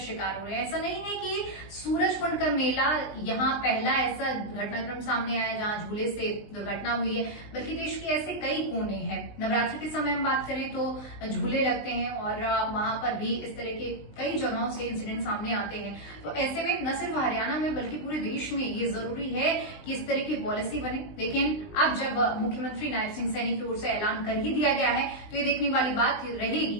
हो रहे हैं। ऐसा नहीं है कि सूरजकुंड का मेला यहाँ पहला ऐसा घटनाक्रम सामने आया जहां झूले से दुर्घटना हुई है, बल्कि देश के ऐसे कई कोने हैं। नवरात्रि के समय हम बात करें तो झूले लगते हैं और वहां पर भी इस तरह के कई जगहों से इंसिडेंट सामने आते हैं। तो ऐसे में न सिर्फ हरियाणा में बल्कि पूरे देश में ये जरूरी है कि इस तरह की पॉलिसी बने। लेकिन अब जब मुख्यमंत्री नायब सिंह सैनी की ओर से ऐलान कर ही दिया गया है तो ये देखने वाली बात रहेगी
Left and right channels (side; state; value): right; late; 20 ms